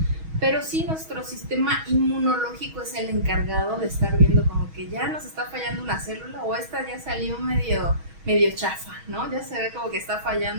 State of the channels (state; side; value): late; left; 6.3 ms